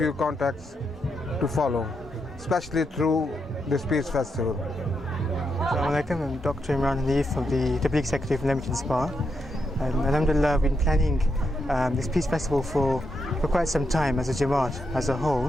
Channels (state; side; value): normal; both; correlation 0.82